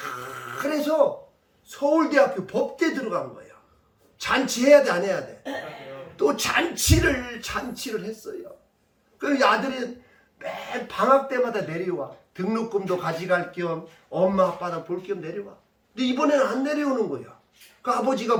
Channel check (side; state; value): both; identical; correlation 1.00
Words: 서울대학교 법대 들어간 거야. 잔치해야 돼 안 해야 돼? 또 잔치를 했어요. 그 아들이 매 방학 때마다 내려와. 등록금도 가져갈 겸 엄마 아빠나 볼 겸 내려와. 근데 이번에는 안 내려오는 거야. 그 아버지가